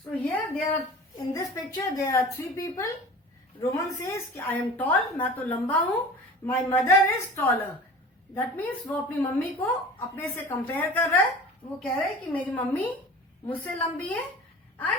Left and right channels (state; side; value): normal; both; correlation 0.39